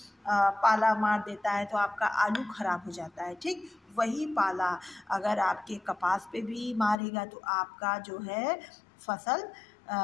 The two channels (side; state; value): right; drops out; at 7.0 s